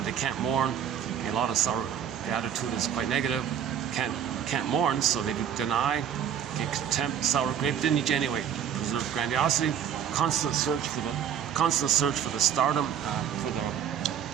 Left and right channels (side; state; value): left; quieter; 8.9 dB